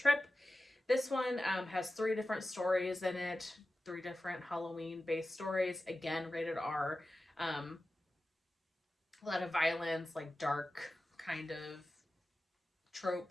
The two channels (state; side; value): normal; both; correlation 0.94